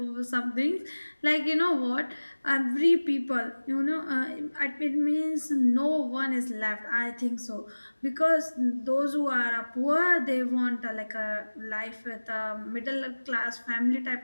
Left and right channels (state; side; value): inverted; both; correlation -1.00